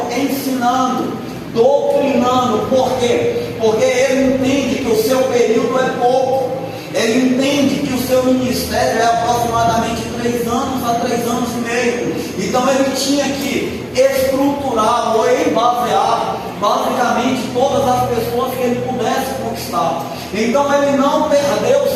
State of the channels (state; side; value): identical; both; correlation 1.00